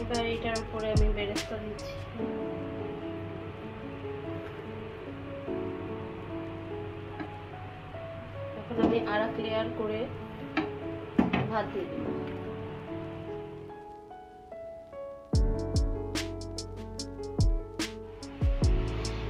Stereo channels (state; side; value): identical; both; correlation 1.00